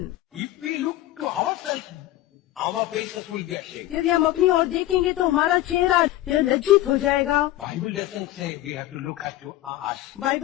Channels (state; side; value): quieter; right; 15.2 dB